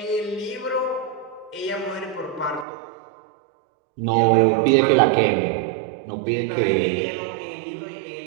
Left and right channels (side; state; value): left; drops out; at 2.7 s